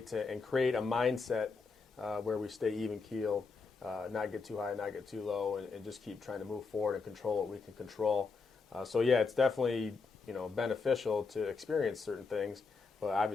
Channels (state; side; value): quieter; right; 4.6 dB